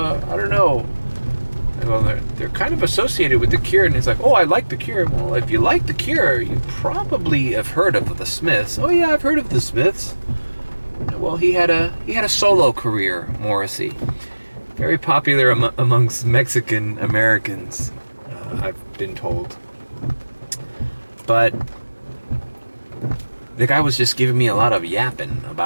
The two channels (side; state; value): both; inverted; correlation -1.00